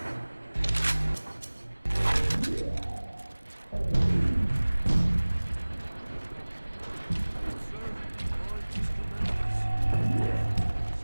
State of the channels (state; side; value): inverted; both; correlation -1.00